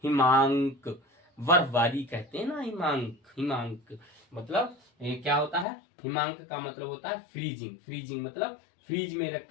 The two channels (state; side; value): drops out; right; at 5.7 s